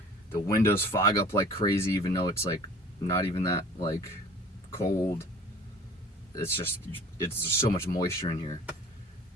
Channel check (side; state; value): both; normal; correlation 0.46